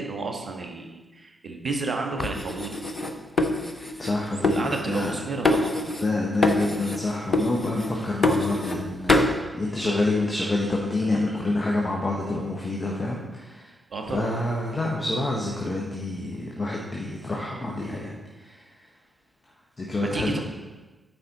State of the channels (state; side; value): normal; both; correlation 0.79